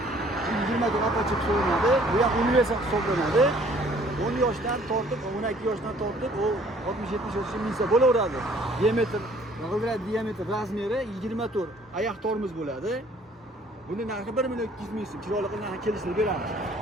20 ta apachiq hisoblanadi. Bu ham universal hisoblanadi. 10 yoshdan tortib, 12 yoshdan tortib, u 60-70 yoshgacha minsa bo'laveradi. Diametr, g'ildirak diametr razmeri 24 oyoq tormoz bo'ladi. Buni narxi 1 million 200 ming so'm. Chiroyli qilib narxini kelishtirib beramiz.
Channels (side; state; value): both; normal; correlation 0.58